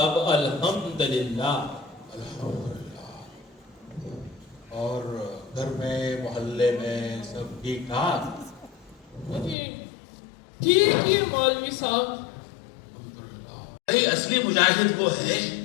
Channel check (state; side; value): drops out; right; at 9.6 s